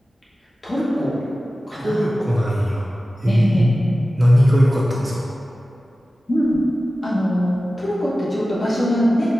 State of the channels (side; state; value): both; normal; correlation 0.95